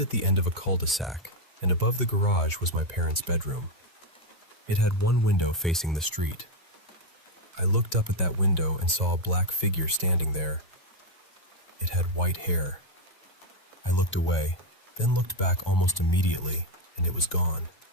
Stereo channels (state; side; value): normal; both; correlation 0.04